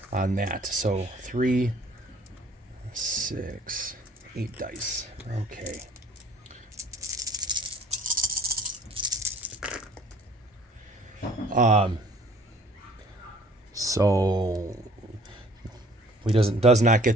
on that. So 3, 6, 8 dice. Okay. So he does not get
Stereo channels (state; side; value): normal; both; correlation 0.54